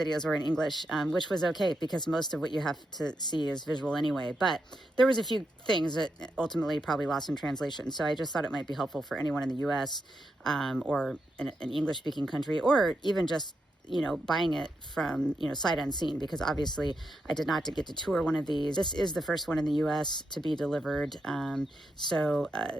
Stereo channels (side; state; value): both; normal; correlation 0.84